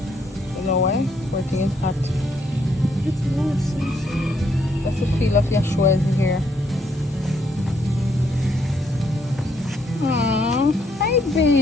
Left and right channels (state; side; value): normal; both; correlation 0.72